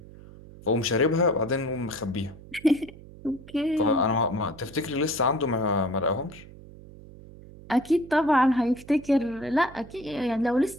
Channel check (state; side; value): noise; right; hum, 19 dB below the sound